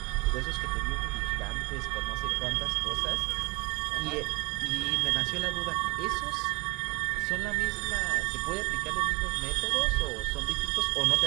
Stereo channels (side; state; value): left; quieter; 25.2 dB